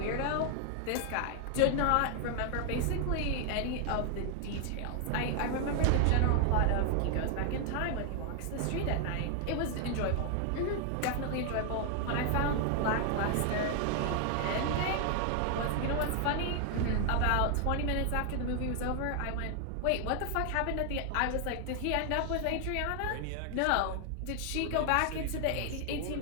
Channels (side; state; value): both; different; correlation 0.00